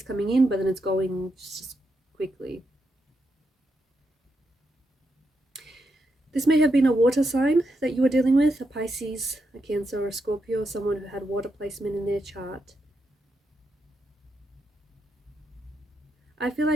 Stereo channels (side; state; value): both; normal; correlation 0.83